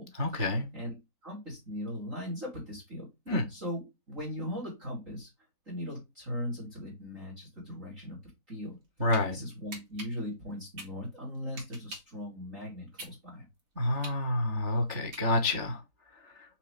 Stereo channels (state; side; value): late; left; 3.9 ms